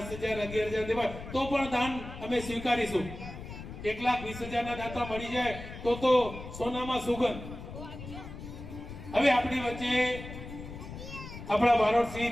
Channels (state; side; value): noise; left; rumble, 11 dB below the sound